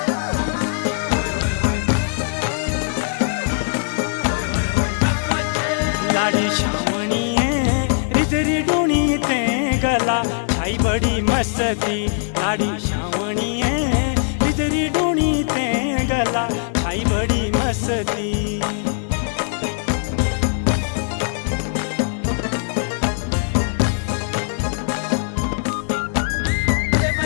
लाडी श्रावणीये रिजरी डूणी ते गला छाई बड़ी मस्ती लाडी श्रावणीये रिजरी डूणी ते गला छाई बड़ी मस्ती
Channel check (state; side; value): silent; right; 65 dB below the other